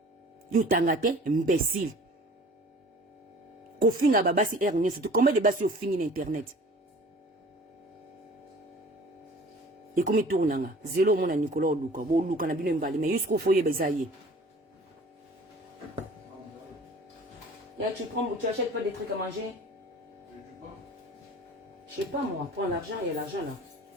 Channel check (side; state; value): both; normal; correlation 0.46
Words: yo tanga te imbécile ko finga babasi ernie surtout combien de basi yo fingi na internet Et comme il tourne, zéro mon Nicolas Luka, bon Luka na bino mbali, mais jusqu'au foyer besaye. Tu achètes pas des trucs à manger? Je sais pas moi, prends l'argent, il y a l'argent là.